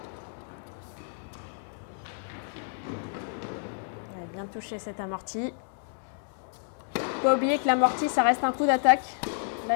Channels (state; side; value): silent; right; digital silence